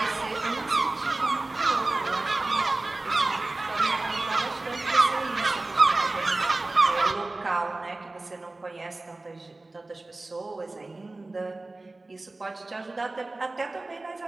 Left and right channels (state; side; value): quieter; left; 3.1 dB